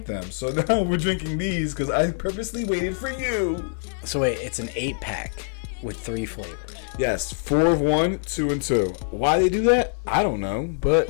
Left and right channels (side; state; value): right; silent; digital silence